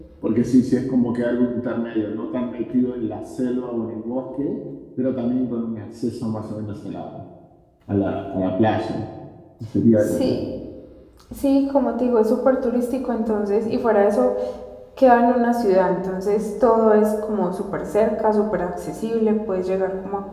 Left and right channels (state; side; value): identical; both; correlation 1.00